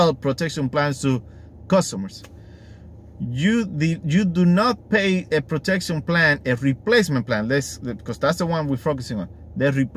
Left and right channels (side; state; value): both; identical; correlation 1.00